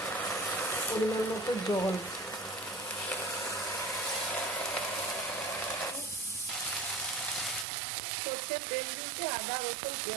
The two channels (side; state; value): left; drops out; at 7.7 s